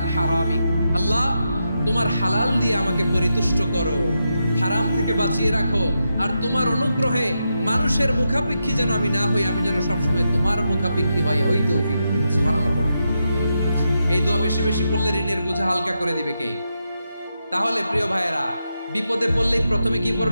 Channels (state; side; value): inverted; both; correlation -0.85